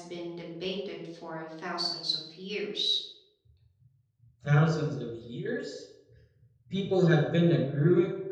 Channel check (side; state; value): both; identical; correlation 1.00